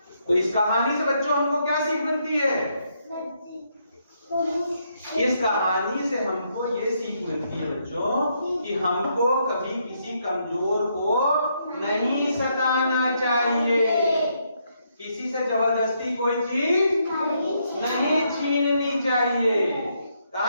तो इस कहानी से बच्चों हमको क्या सीख मिलती है? इस कहानी से हमको ये सीख मिलती है बच्चों कि हमको कभी किसी कमजोर को नहीं सताना चाहिए, किसी से जबरदस्ती कोई चीज नहीं छीननी चाहिए।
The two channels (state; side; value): inverted; both; correlation -0.76